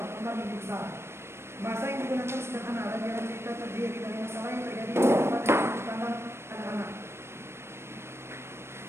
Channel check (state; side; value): late; left; 0.12 ms